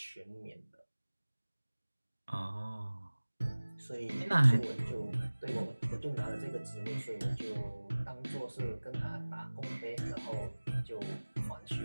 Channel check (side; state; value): both; inverted; correlation -1.00